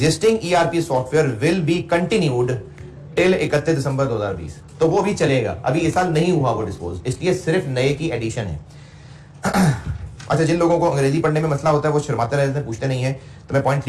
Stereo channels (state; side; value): identical; both; correlation 1.00